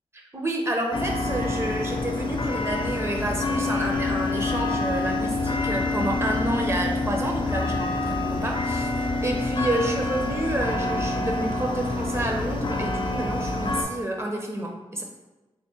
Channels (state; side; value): normal; both; correlation 0.68